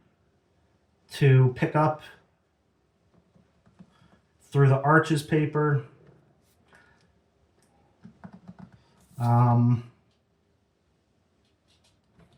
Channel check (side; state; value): both; identical; correlation 1.00